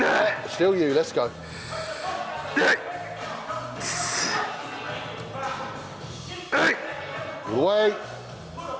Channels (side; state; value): both; identical; correlation 1.00